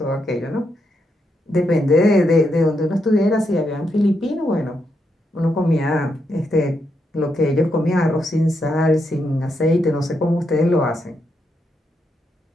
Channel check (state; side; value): normal; both; correlation 0.81